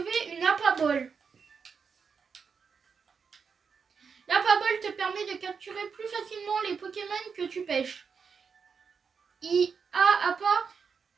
une Apabol. L'Apabol te permet de capturer plus facilement les Pokémon que tu pêches. Apa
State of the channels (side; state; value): left; quieter; 5.9 dB